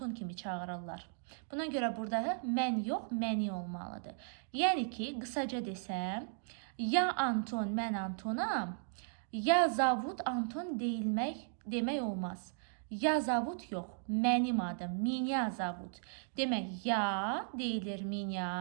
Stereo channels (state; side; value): silent; left; digital silence